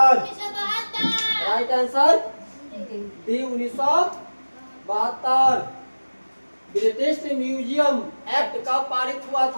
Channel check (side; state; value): both; inverted; correlation -1.00